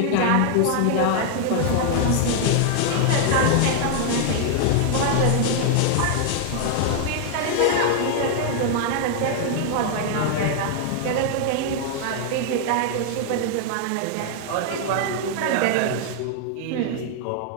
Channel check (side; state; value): both; different; correlation 0.00